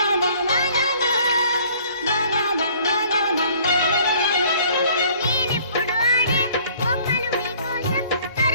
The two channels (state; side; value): inverted; both; correlation -0.55